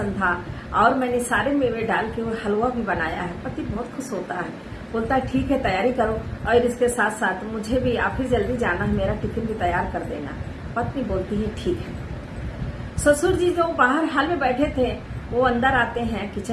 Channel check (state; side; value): identical; both; correlation 1.00